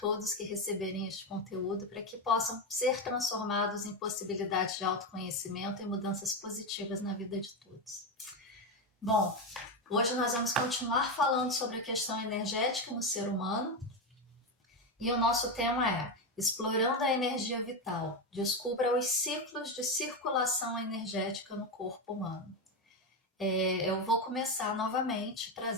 que receberem este conteúdo para que possam ser transformados em possibilidades de autoconhecimento e mudanças positivas na vida de todos. Bom, hoje nós vamos continuar falando sobre a questão energética no ser humano e o nosso tema é Explorando a energia vital, descubra os ciclos de circulação energética no corpo humano. Eu vou começar novamente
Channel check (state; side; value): normal; both; correlation 0.12